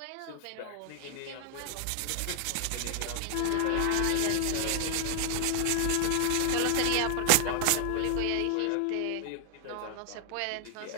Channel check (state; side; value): different; both; correlation 0.00